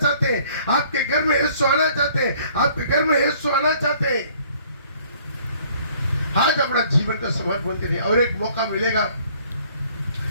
हैं, आपके घर में यीशु आना चाहते हैं, आपके घर में यीशु आना चाहते हैं। आज अपना जीवन का समर्पण करिए, और एक मौका मिलेगा,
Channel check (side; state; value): both; inverted; correlation -0.58